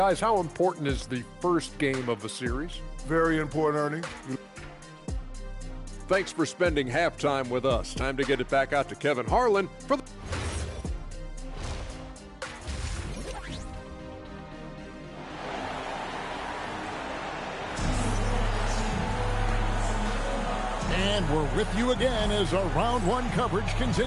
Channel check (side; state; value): both; identical; correlation 1.00